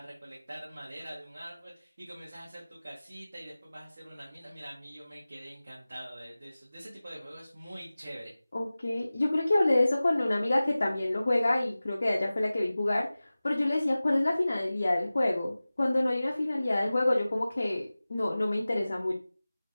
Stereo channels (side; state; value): both; inverted; correlation -0.97